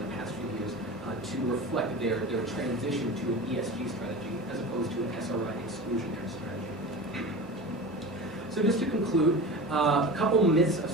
past few years to reflect their transition to an ESG strategy as opposed to an SRI exclusionary strategy. So just to conclude, a couple myths of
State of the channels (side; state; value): both; normal; correlation 0.31